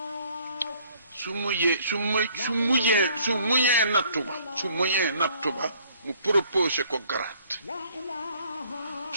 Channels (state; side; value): inverted; both; correlation -0.60